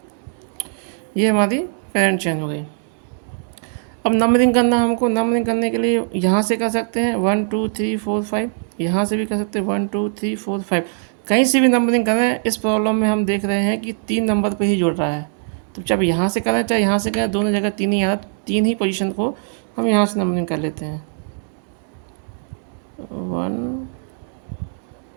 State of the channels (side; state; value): left; silent; digital silence